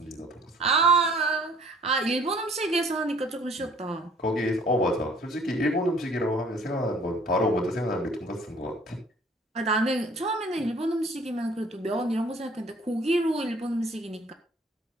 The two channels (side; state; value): both; normal; correlation 0.56